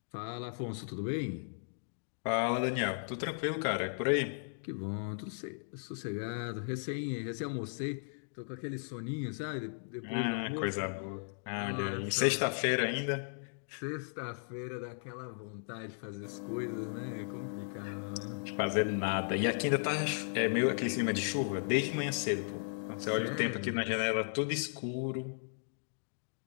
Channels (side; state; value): right; silent; digital silence